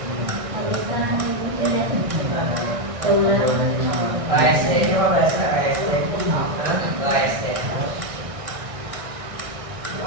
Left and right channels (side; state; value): left; late; 1.6 ms